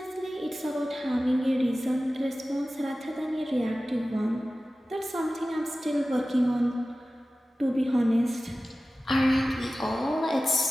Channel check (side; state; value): both; normal; correlation 0.96